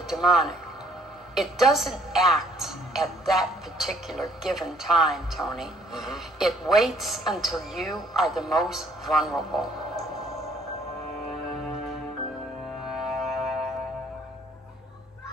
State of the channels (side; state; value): both; normal; correlation 0.62